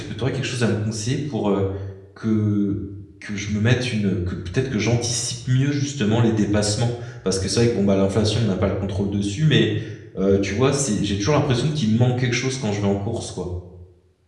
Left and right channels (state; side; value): identical; both; correlation 1.00